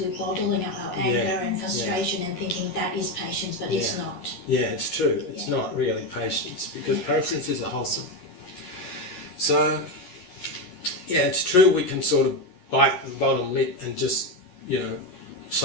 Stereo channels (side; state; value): right; late; 11 ms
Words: we're bottling up our anger and frustration and thinking that is patience, but it's not. Yeah, it's true. It's not really patience because patience is a wholesome. So, it's true we can sort of bite the bottom lip and just,